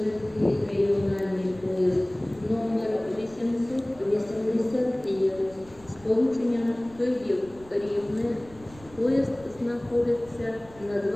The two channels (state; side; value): noise; right; rumble, 23 dB below the sound